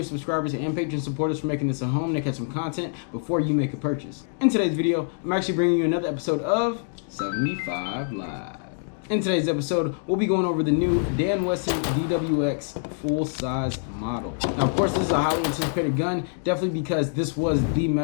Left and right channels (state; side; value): silent; right; digital silence